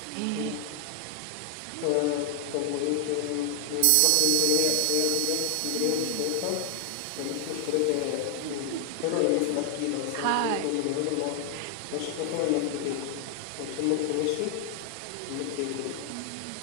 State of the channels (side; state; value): both; different; correlation 0.00